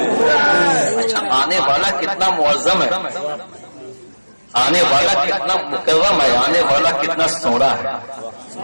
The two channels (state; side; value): inverted; both; correlation -1.00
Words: اچھا آنے والا کتنا معظم ہے، آنے والا کتنا مکرم ہے، آنے والا کتنا سونا ہے،